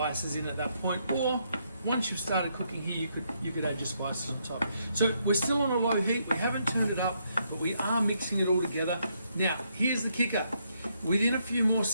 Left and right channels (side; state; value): both; inverted; correlation -0.75